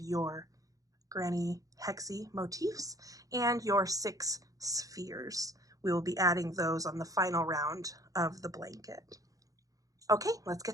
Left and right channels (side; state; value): left; late; 0.17 ms